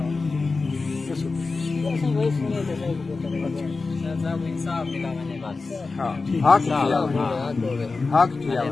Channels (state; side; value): quieter; right; 4.0 dB